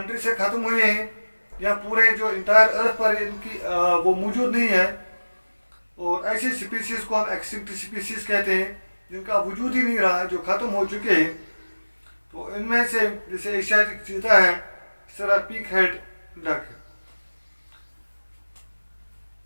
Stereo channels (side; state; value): both; inverted; correlation -1.00